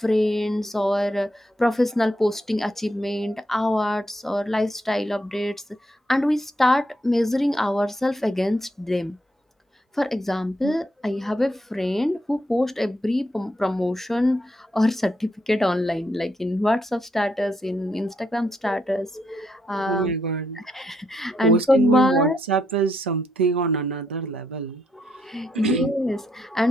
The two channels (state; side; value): normal; both; correlation 0.77